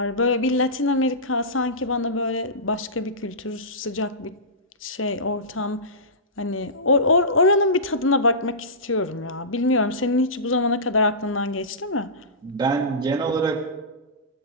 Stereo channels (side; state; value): both; normal; correlation -0.19